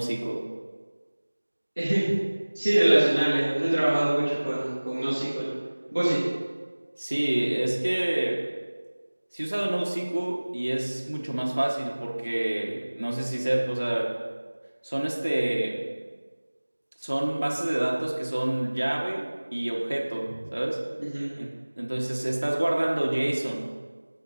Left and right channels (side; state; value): both; inverted; correlation -1.00